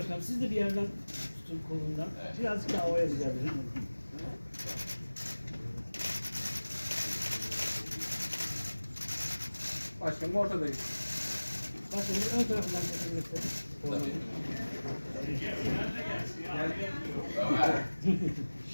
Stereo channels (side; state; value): both; inverted; correlation -1.00